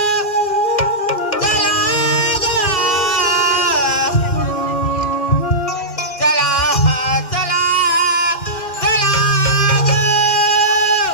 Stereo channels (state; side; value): late; right; 2.7 ms